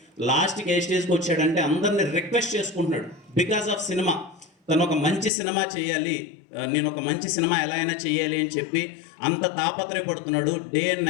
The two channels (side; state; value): right; drops out; at 5.3 s